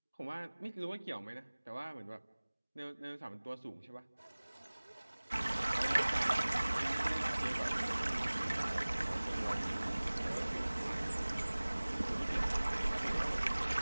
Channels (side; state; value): both; inverted; correlation -1.00